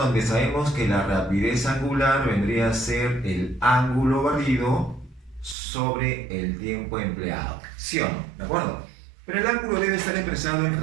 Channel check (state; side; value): drops out; left; at 5.6 s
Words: sabemos que la rapidez angular vendría a ser el ángulo barrido sobre el tiempo empleado. ¿Sí o no? ¿De acuerdo? Pero el ángulo debe estar expresado en